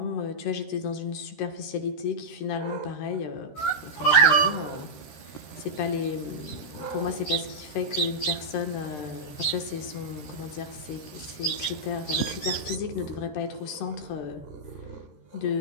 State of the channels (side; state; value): right; late; 13 ms